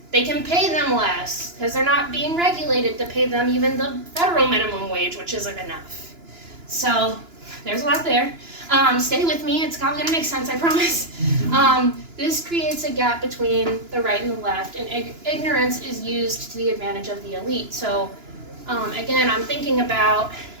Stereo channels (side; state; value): left; late; 2.9 ms